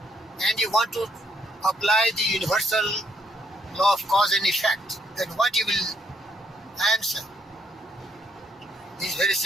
and you want to apply the universal law of cause and effect, then what you will answer is very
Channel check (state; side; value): normal; both; correlation 0.72